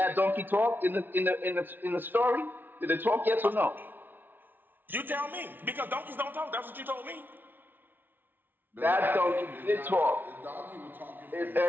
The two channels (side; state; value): left; late; 0.093 ms